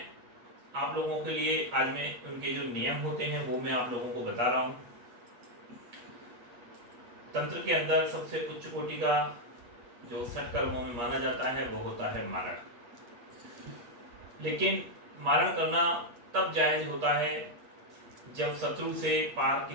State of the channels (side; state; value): left; late; 8.3 ms